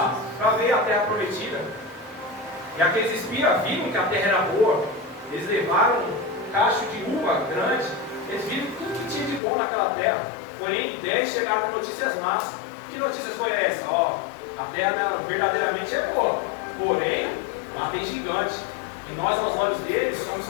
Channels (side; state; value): right; drops out; at 9.4 s